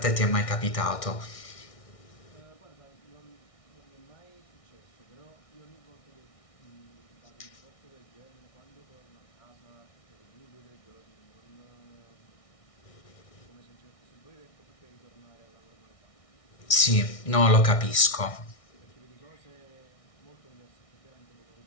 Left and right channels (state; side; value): late; right; 1.6 ms